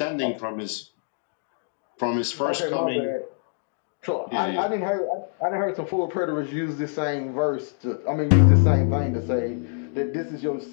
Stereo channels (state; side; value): silent; right; digital silence